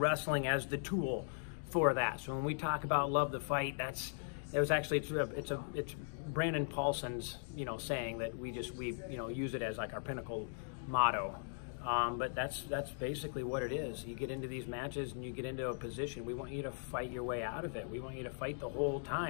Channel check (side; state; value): right; silent; digital silence